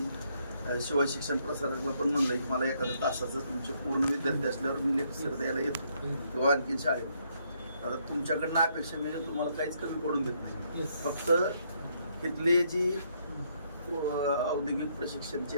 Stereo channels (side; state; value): both; inverted; correlation -0.72